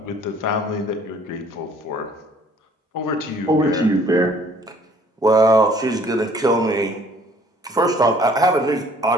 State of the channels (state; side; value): normal; both; correlation 0.57